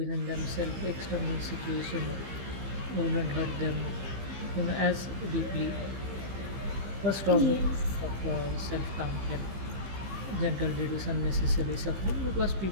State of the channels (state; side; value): late; left; 15 ms